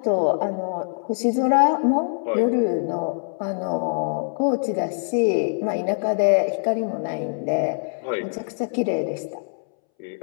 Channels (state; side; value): silent; right; 63 dB below the other